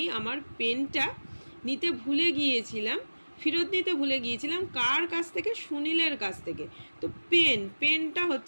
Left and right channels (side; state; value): both; inverted; correlation -1.00